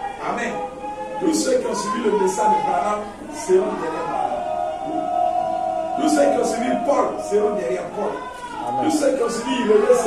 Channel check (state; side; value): identical; both; correlation 1.00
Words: Amen. Tous ceux qui ont suivi le message de Branham seront derrière Branham. Tous ceux qui ont suivi Paul seront derrière Paul. Amen. Tous ceux qui ont suivi Irénée